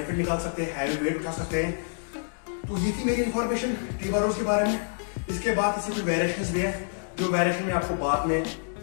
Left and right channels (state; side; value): silent; right; digital silence